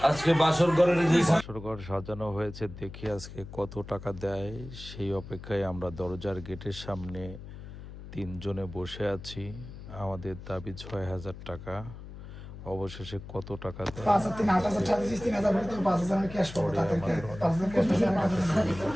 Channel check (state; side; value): noise; left; hum, 13 dB below the sound